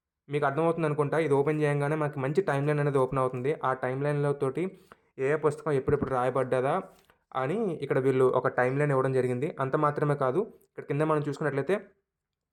మీకు అర్థమవుతుంది అనుకుంటా. ఇది ఓపెన్ చేయగానే మనకి మంచి టైం లైన్ అనేది ఓపెన్ అవుతుంది. ఆ టైం లైన్లో తోటి ఏ పుస్తకం ఎప్పుడెప్పుడు రాయబడ్డదా అని ఇక్కడ వీళ్ళు ఒక టైం లైన్ ఇవ్వడం జరిగింది. అంత మాత్రమే కాదు, ఇక్కడ కింద మనం చూసుకున్నట్లయితే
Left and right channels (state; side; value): identical; both; correlation 1.00